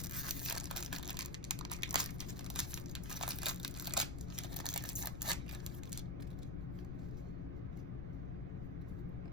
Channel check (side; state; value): left; noise; rumble, 4 dB below the sound